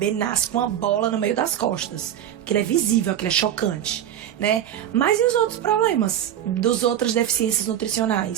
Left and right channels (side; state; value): left; quieter; 10.8 dB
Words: nasce com uma bola no meio das costas. Aquilo é visível, aquilo é chocante, né? Mas e os outros problemas das outras deficiências